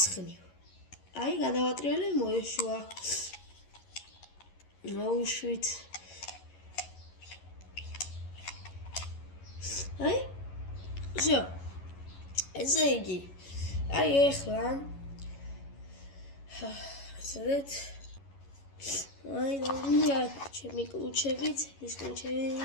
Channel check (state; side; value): late; right; 11 ms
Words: აი გადავატრიალე, მოეშვა. მოვუშვით. აი всё. ესე იგი, აი ახლა ასეთ აი დავიდა ჩემი კლუჩებით, ის კლუჩები